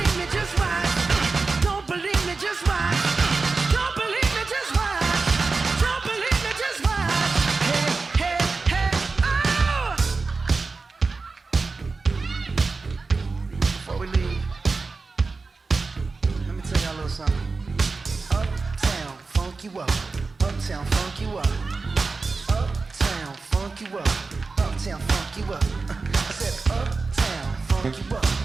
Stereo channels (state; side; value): quieter; left; 4.1 dB